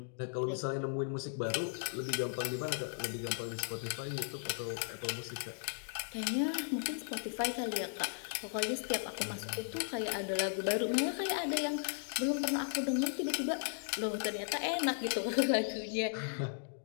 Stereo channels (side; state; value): right; silent; digital silence